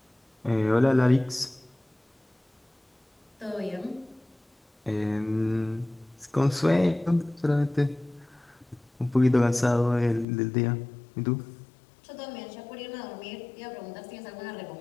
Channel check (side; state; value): right; drops out; at 10.2 s